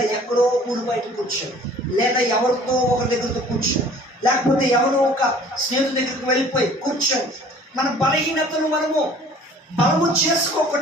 ఎక్కడో ఊరు బయట కూర్చొని, లేదా ఎవరితో ఒకరి దగ్గరతో కూర్చొని, లేకపోతే ఎవరో ఒక స్నేహితుడి దగ్గరికి వెళ్ళిపోయి కూర్చొని మన బలహీనతను మనము బలము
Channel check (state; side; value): normal; both; correlation 0.51